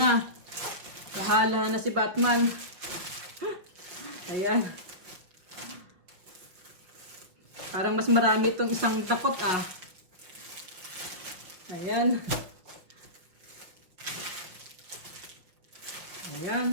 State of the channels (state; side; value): late; left; 5.7 ms